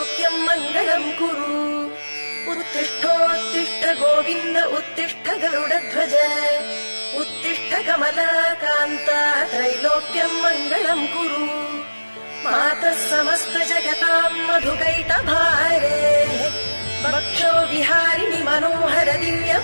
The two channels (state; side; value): inverted; both; correlation -1.00